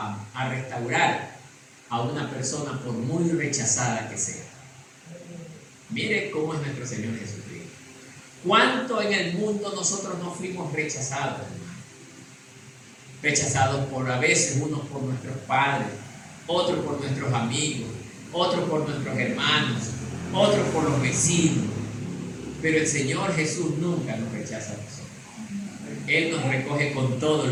restaurar a una persona por muy rechazada que sea. Mire cómo es nuestro Señor Jesucristo. ¿Cuánto en el mundo nosotros no fuimos rechazados, hermano? Rechazados por, a veces, unos por nuestros padres, otros por nuestros amigos, otros por nuestros hermanos, otros por los vecinos. Pero el Señor Jesús nunca nos rechaza a nosotros. Él nos recoge con todo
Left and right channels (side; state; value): both; identical; correlation 1.00